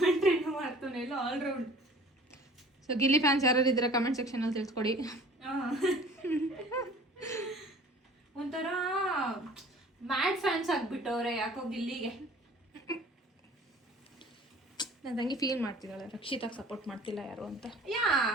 ಮಾಡ್ತಾವನೆ, ಎಲ್ಲ ಆಲ್ರೌಂಡ್. ಸೊ ಗಿಲ್ಲಿ ಫ್ಯಾನ್ಸ್ ಯಾರು ಇದ್ರೆ ಕಮೆಂಟ್ ಸೆಕ್ಷನ್ ಅಲ್ಲಿ ತಿಳಿಸ್ಕೊಡಿ. ಒಂಥರ ಮ್ಯಾಡ್ ಫ್ಯಾನ್ಸ್ ಆಗ್ಬಿಟ್ಟವ್ರೆ ಯಾಕೋ ಗಿಲ್ಲಿಗೆ. ನನ್ನ ತಂಗಿ ಫೀಲ್ ಮಾಡ್ತಿದ್ದಾಳೆ, ರಕ್ಷಿತಾಗ್ ಸಪೋರ್ಟ್ ಮಾಡ್ತಿಲ್ಲ ಯಾರು ಅಂತ.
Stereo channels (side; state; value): both; normal; correlation 0.48